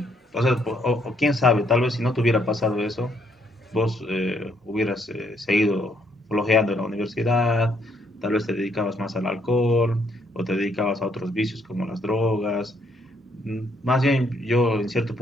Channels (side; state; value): both; normal; correlation 0.70